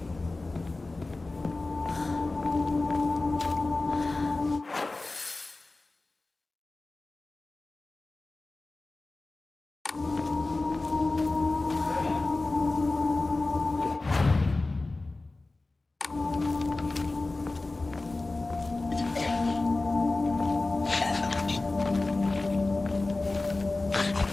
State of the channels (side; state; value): right; quieter; 3.2 dB